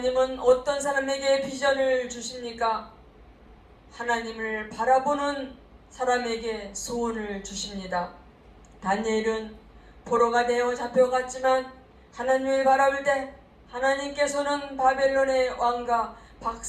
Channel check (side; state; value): both; identical; correlation 1.00